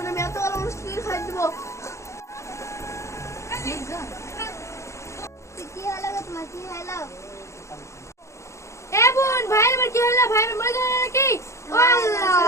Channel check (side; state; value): right; late; 0.14 ms